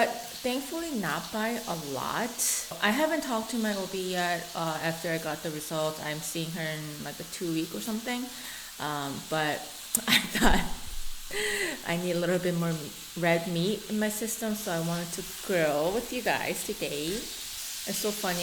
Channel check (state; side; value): identical; both; correlation 1.00